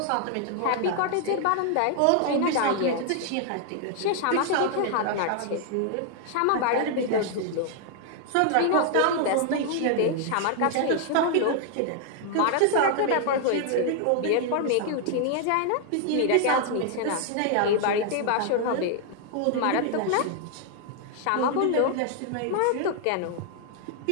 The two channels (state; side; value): different; both; correlation 0.00